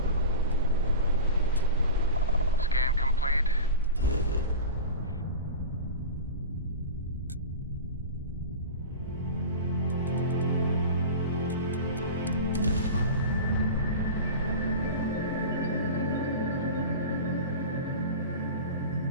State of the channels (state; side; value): inverted; both; correlation -0.30